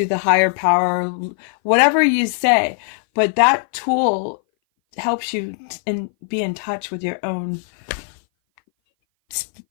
the higher power, whatever you say. But that tool helps you be in touch with your own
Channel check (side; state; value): right; silent; 59 dB below the other